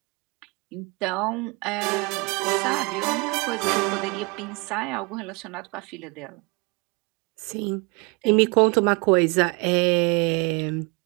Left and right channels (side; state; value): left; quieter; 29.3 dB